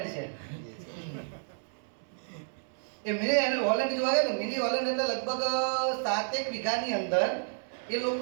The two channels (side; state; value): left; silent; 57 dB below the other